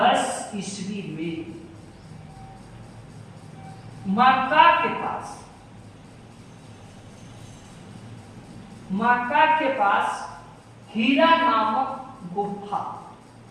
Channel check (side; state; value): both; identical; correlation 1.00